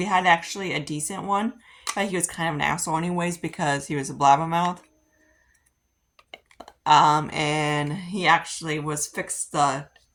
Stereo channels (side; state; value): both; identical; correlation 1.00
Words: had actually a decent one, but he was kind of an asshole anyways because he was a blabbermouth. And he actually was fixed the